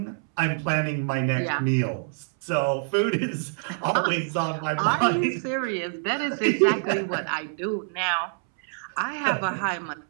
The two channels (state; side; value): silent; left; 61 dB below the other